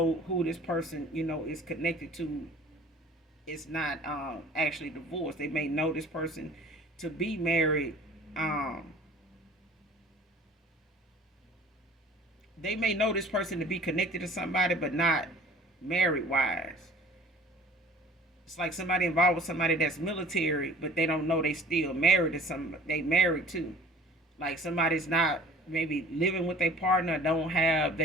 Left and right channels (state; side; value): normal; both; correlation 0.47